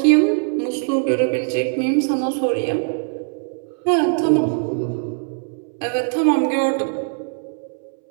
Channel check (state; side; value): silent; left; 65 dB below the other